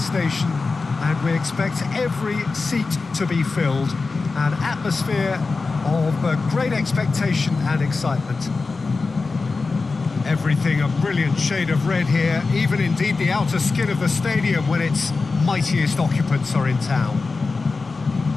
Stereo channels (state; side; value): quieter; right; 4.0 dB